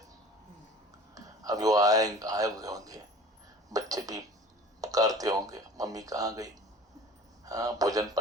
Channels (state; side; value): normal; both; correlation 0.44